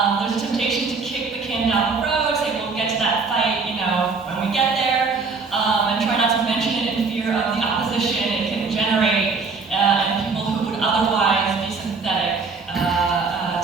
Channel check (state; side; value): quieter; left; 4.5 dB